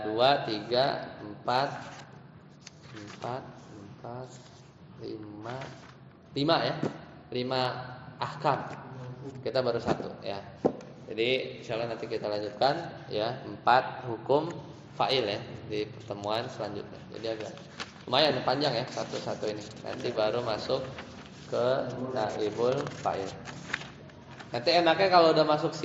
2, 3, 4, 5 ya. 5 ahkam. Kita baru 1 ya. Jadi insyaallah nanti kita lanjutkan ya 4 hukum fa'il ya di pertemuan selanjutnya. Jadi agak lumayan panjang ya satu-satu ini. Nanti baru masuk ke naibul fa'il. Nanti enaknya kalau udah masuk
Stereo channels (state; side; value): identical; both; correlation 1.00